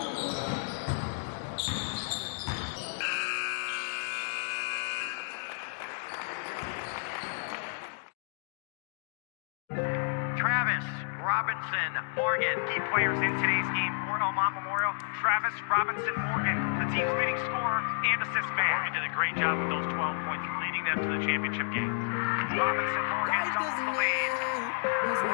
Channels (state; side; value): silent; right; digital silence